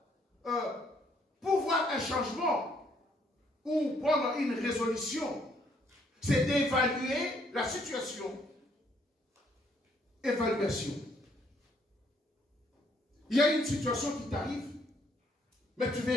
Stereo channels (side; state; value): both; normal; correlation 0.68